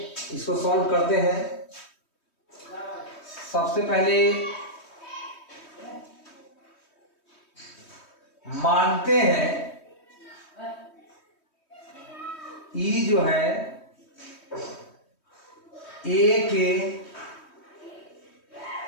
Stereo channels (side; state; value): right; late; 3.2 ms